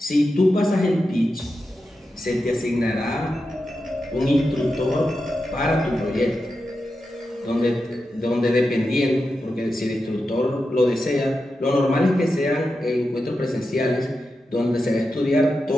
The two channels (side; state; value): both; normal; correlation 0.89